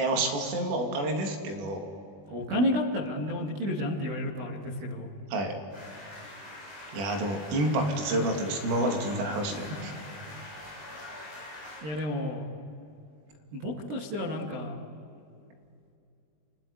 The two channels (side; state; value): left; late; 20 ms